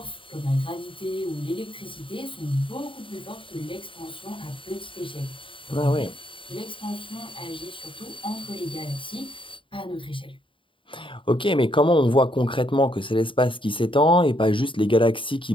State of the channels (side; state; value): right; late; 0.25 ms